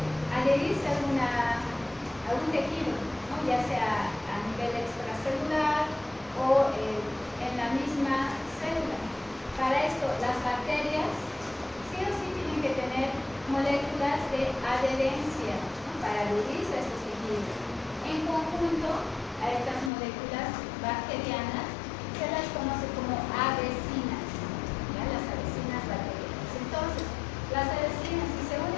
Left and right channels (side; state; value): right; drops out; at 19.9 s